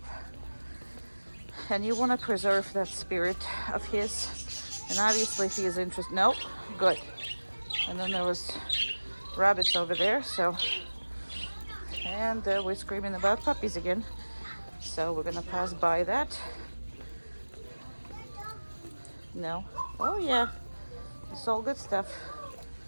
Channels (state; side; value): inverted; both; correlation -1.00